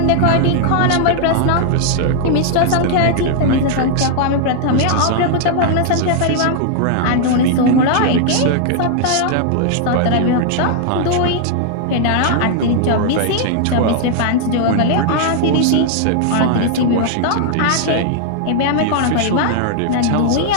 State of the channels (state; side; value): different; both; correlation 0.00